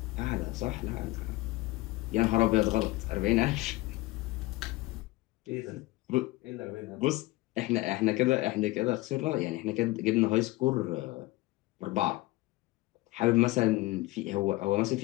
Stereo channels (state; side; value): quieter; right; 19.8 dB